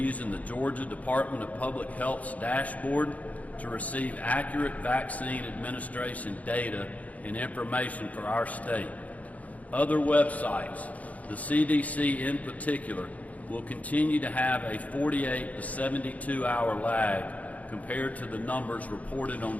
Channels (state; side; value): late; right; 0.071 ms